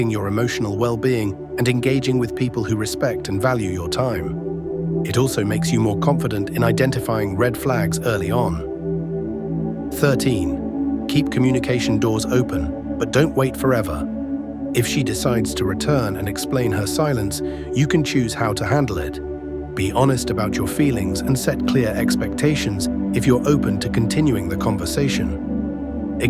your emotional well-being and engaging with people who respect and value your time. It also makes you more confident in identifying red flags early on. 13. Keep communication doors open, but don't wait forever. If she decides to return and explain her silence, you can choose how to handle it. Be honest about your feelings and set clear expectations if you're open to continuing the conversation.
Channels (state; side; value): identical; both; correlation 1.00